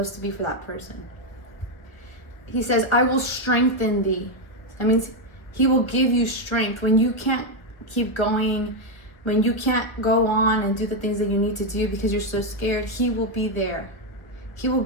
to be for that person. He says, I will strengthen thee. That means he will give you strength when you can't keep going, when you can't go on and do the things that you need to do because you're so scared, he will be there. He will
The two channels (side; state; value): right; late; 1.1 ms